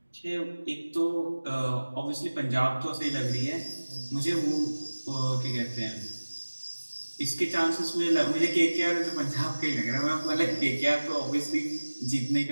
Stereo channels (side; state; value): both; inverted; correlation -1.00